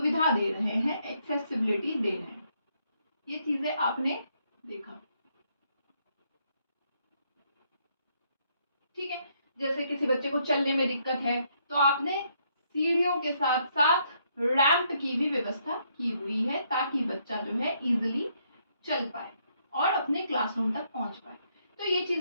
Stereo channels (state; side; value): inverted; both; correlation -0.73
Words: दे रहे हैं, एक्सेसिबिलिटी दे रहे हैं। ये चीजें आपने देखा। ठीक है, जैसे किसी बच्चे को चलने में दिक्कत है तो आपने सीढ़ियों के साथ साथ रैंप की भी व्यवस्था की हुई है ताकि बच्चा जो है इजीली चल पाए और अपने क्लासरूम तक पहुंच पाए। तो ये